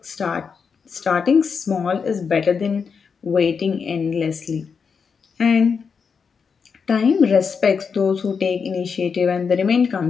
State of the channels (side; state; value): right; quieter; 5.9 dB